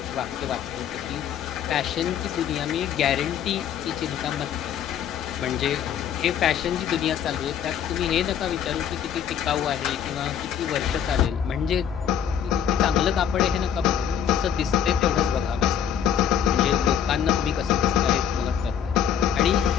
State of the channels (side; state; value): right; quieter; 9.0 dB